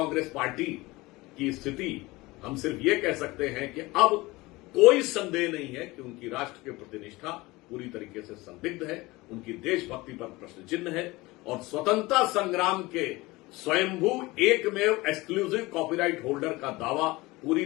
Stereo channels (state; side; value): quieter; right; 21.3 dB